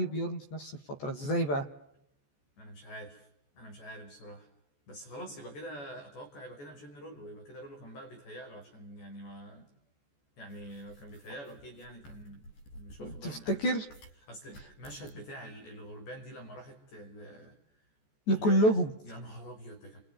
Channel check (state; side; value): late; right; 14 ms